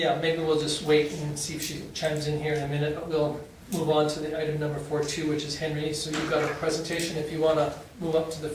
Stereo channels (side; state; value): both; identical; correlation 1.00